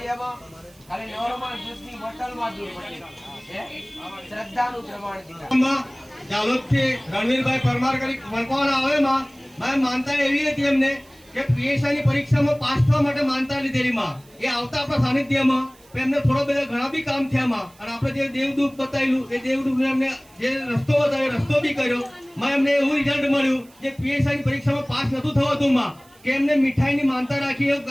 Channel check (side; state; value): right; noise; hiss, 28 dB below the sound